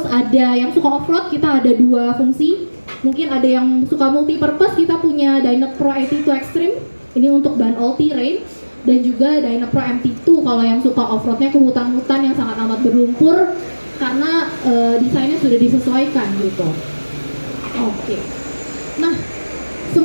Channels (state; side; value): inverted; both; correlation -1.00